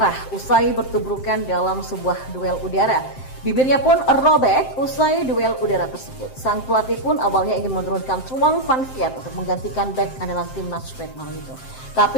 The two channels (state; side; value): late; right; 7.7 ms